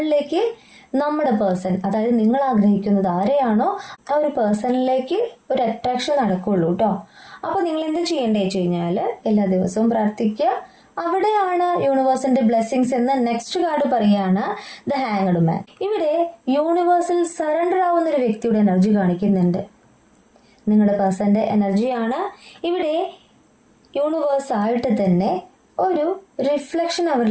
നമ്മുടെ പേഴ്സൺ, അതായത് നിങ്ങൾ ആഗ്രഹിക്കുന്നത് ആരെയാണോ ആ ഒരു പേഴ്സണിലേക്ക് ഒരു അട്രാക്ഷൻ നടക്കുള്ളൂ കേട്ടോ. അപ്പൊ നിങ്ങൾ എന്ത് ചെയ്യേണ്ടത് വെച്ച് കഴിഞ്ഞാല് എല്ലാ ദിവസവും പ്രാർത്ഥിക്കുക. അവിടെയാണ് യൂണിവേഴ്സിന്റെ ബ്ലെസ്സിങ്സ് എന്ന നെക്സ്റ്റ് കാർഡ് പറയാണ് ദ ഹാങ്ഡ് മാൻ. ഇവിടെ യൂണിവേഴ്സിൽ സറണ്ടർ ആവുന്ന ഒരു വ്യക്തിയുടെ എനർജി കാണിക്കുന്നുണ്ട്. നിങ്ങളുടെ പേഴ്സന്റെ എനർജിയാണ്. ഇവിടെ യൂണിവേഴ്സ് ആയിട്ട് തന്നെ ഒരു റിഫ്ലക്ഷൻ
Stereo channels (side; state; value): both; identical; correlation 1.00